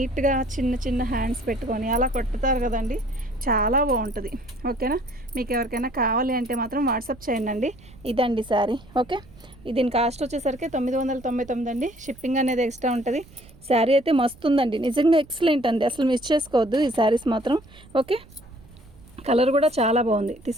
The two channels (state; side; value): noise; right; rumble, 23 dB below the sound